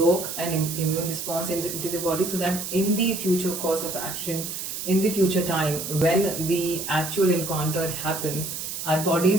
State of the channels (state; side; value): noise; right; hiss, 6 dB below the sound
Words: an immune response into the body, so that in the future course of action, in the future time, when the actual encounter happens, our body